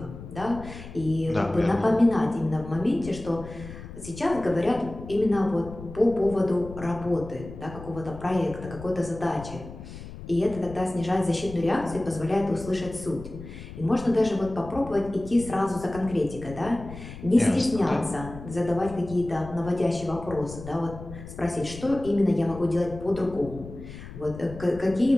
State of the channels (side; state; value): left; noise; rumble, 13 dB below the sound